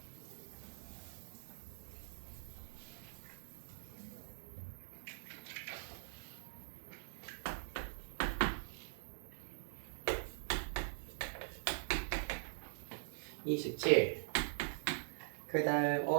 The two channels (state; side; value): silent; left; digital silence